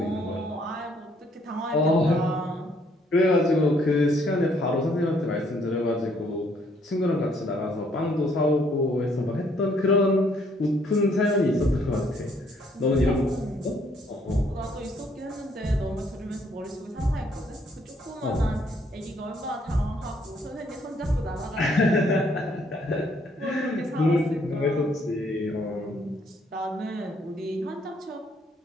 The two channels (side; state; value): both; normal; correlation 0.67